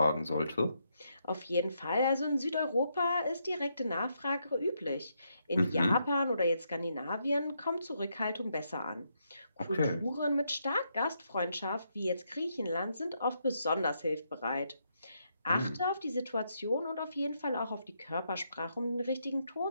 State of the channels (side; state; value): both; inverted; correlation -0.78